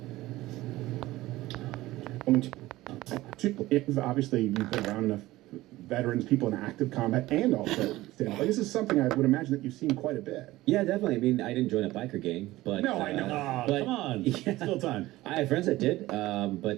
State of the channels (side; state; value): left; quieter; 17.5 dB